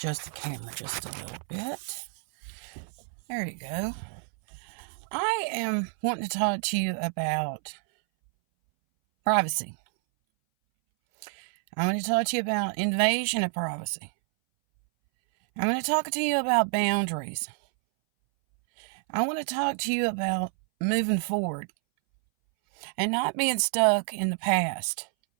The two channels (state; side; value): silent; left; 59 dB below the other